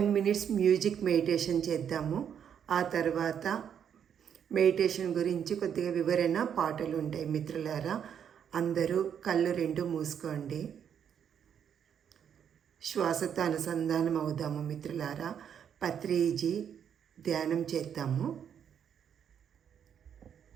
minutes మ్యూజిక్ మెడిటేషన్ చేద్దాము. ఆ తర్వాత మెడిటేషన్ గురించి కొద్దిగా వివరణ పాటలు ఉంటాయి. మిత్రులారా, అందరూ కళ్ళు రెండు మూసుకోండి. శ్వాసతో అనుసంధానం అవుదాము. మిత్రులారా, పత్రిజీ ధ్యానం చేద్దాము.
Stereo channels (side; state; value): left; quieter; 8.4 dB